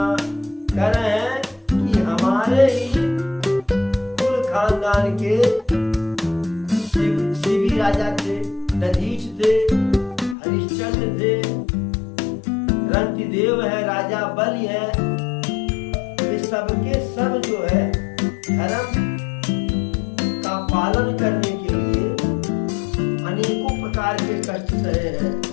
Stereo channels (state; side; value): drops out; right; at 10.4 s